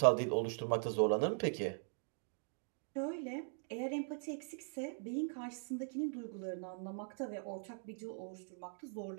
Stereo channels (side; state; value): left; silent; 51 dB below the other